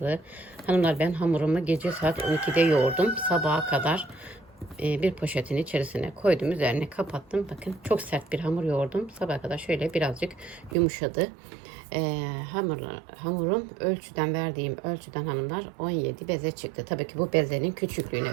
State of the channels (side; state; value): left; drops out; at 10.8 s